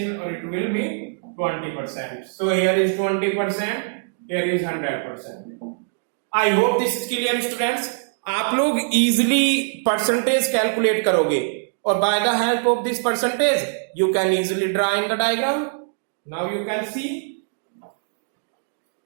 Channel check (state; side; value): silent; left; digital silence